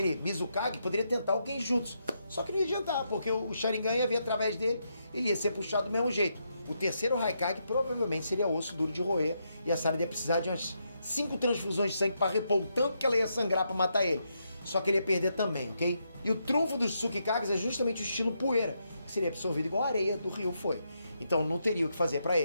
Mizukage, poderia tentar o Genjutsu. Só que não ia adiantar, porque o Sharingan ia vir através dele, ele ia ser puxado do mesmo jeito. O terceiro Raikage provavelmente seria osso duro de roer e a Sarada ia precisar de umas 5 transfusões de sangue para repor o tanto que ela ia sangrar para matar ele. Só que ele ia perder também, ok? E o trunfo dos Tsukikages é justamente o estilo poeira, que seria absorvido igual a areia do Ryu foi. Então não teria o que fazer para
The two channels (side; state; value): both; inverted; correlation -0.81